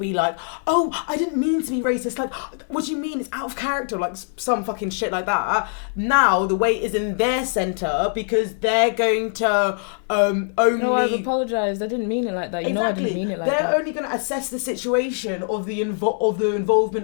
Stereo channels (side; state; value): right; silent; 55 dB below the other